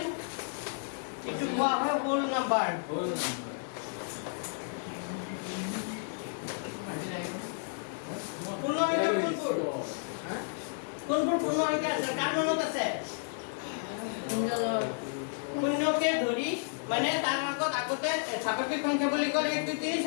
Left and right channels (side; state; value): right; silent; digital silence